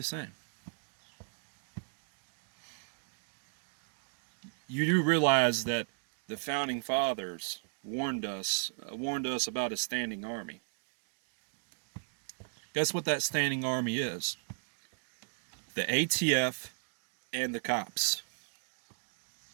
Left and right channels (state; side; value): silent; left; digital silence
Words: same? You do realize that the founding fathers warned us about a standing army. Guess what that standing army is? The ATF and the cops.